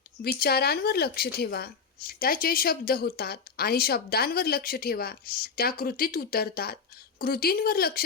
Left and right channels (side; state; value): right; quieter; 5.6 dB